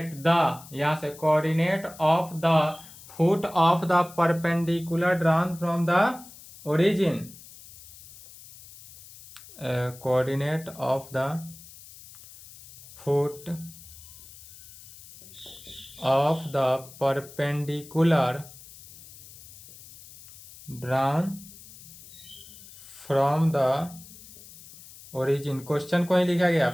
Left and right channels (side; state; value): left; noise; hiss, 19 dB below the sound